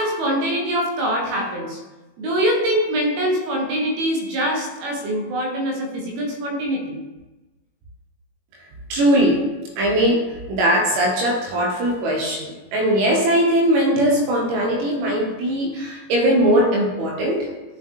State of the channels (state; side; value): late; left; 21 ms